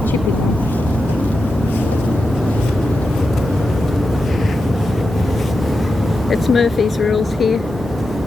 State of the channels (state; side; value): normal; both; correlation 0.89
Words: chippy one. It's Murphy's rules here.